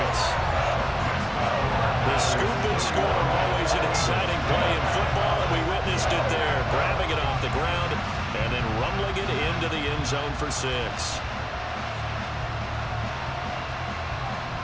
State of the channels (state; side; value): identical; both; correlation 1.00